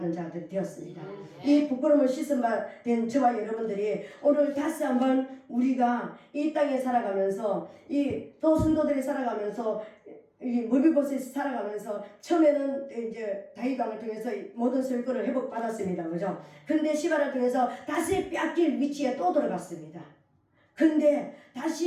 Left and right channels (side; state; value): both; identical; correlation 1.00